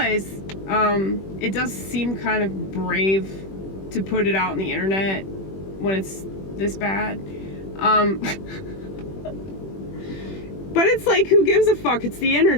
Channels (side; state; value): right; late; 21 ms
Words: it does seem kind of brave to put it out on the internet when it's this bad. But it's like, who gives a fuck? It's the